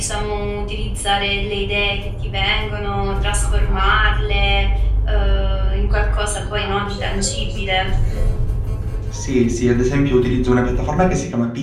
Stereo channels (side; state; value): both; identical; correlation 1.00